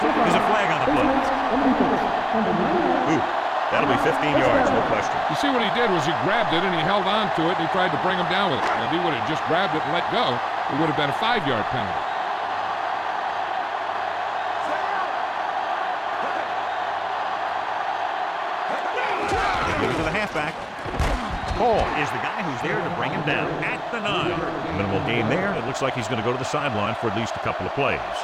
a flag on the play. Ooh, that'll be 15 yards, no question. You see what he did was he grabbed it and he held on to it and he tried to bring him down with it. Now, if he would have just grabbed it and let go, it would have been a 5-yard penalty. They give it to the halfback. Paul is the guy who's there to bring him down at the 9. Minimal gain there. It looks like he's going to go to the sideline for at least a couple of plays.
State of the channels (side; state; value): both; identical; correlation 1.00